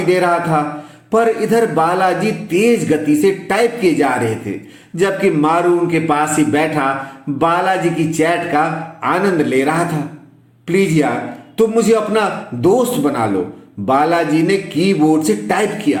दे रहा था। पर इधर बालाजी तेज गति से टाइप किए जा रहे थे, जबकि मारू उनके पास ही बैठा बालाजी की चैट का आनंद ले रहा था। प्लीज यार, तुम मुझे अपना दोस्त बना लो, बालाजी ने कीबोर्ड से टाइप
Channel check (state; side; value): identical; both; correlation 1.00